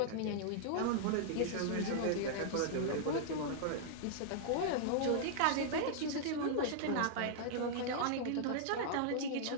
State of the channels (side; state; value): both; different; correlation -0.01